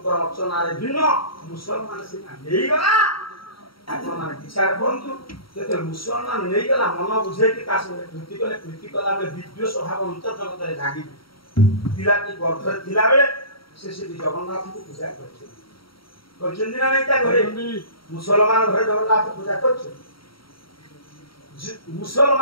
अर्चना भिन्न मुसलमान से गला विचार करूँ मुसलमान नहीं गला मन बुझे कृति कले कृति कला विद्वेष भाव अंतर जगत में जागी पिलाटी गर्भरे थिला बेले से जगन्नाथ को पूजा कर मुसलमान घर जगन्नाथ पूजा कर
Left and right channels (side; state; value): right; late; 0.74 ms